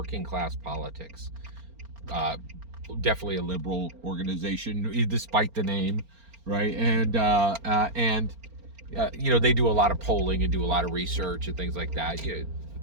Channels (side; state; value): left; late; 4.4 ms